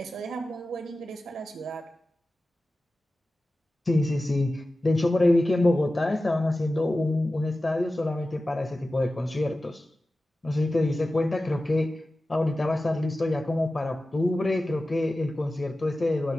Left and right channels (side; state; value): both; normal; correlation 0.95